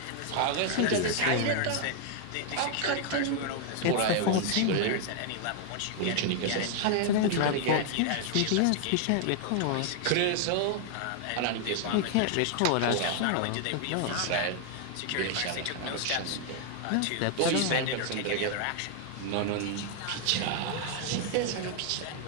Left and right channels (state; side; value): different; both; correlation 0.00